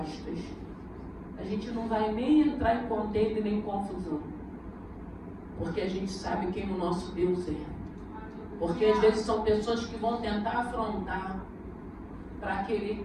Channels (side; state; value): both; identical; correlation 1.00